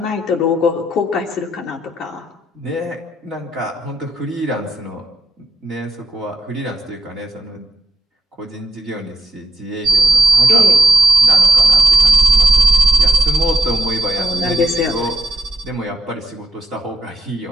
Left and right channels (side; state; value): both; normal; correlation 0.86